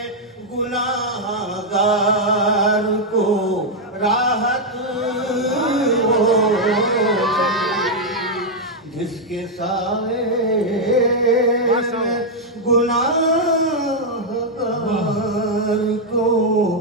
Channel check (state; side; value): normal; both; correlation -0.01